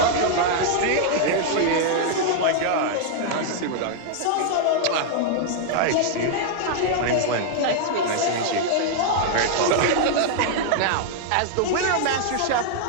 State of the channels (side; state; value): both; different; correlation -0.01